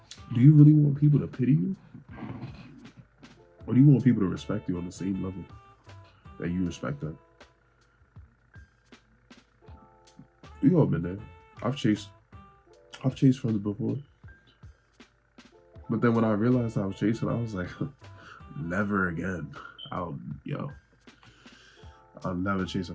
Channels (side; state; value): both; identical; correlation 1.00